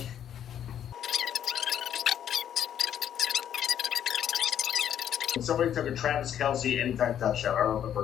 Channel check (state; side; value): quieter; right; 9.8 dB